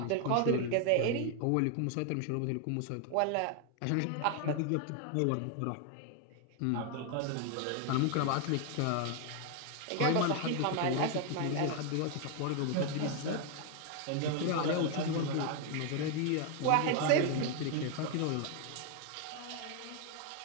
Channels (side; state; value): both; different; correlation 0.00